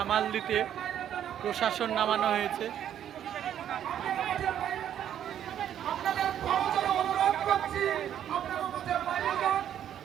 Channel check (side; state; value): left; quieter; 10.2 dB